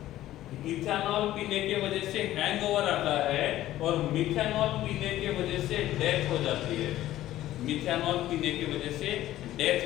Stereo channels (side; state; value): right; quieter; 14.2 dB